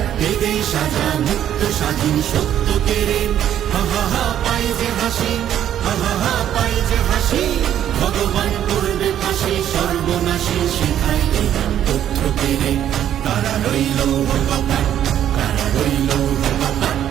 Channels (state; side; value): quieter; left; 10.7 dB